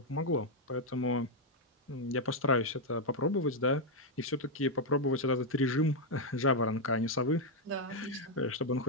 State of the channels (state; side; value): normal; both; correlation 0.00